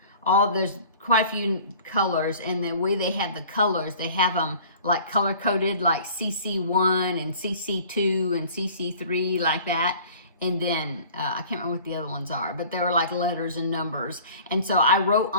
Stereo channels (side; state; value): both; inverted; correlation -0.47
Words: there's quite a few colors, and the way they have the colors, they have them like color coded, like CC1 and CC2 and CC3, like that. And then I can't remember what the other ones are, but they were like letters and numbers. And so I wrote